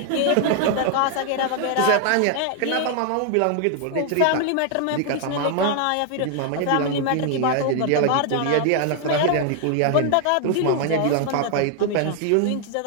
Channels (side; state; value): both; different; correlation 0.00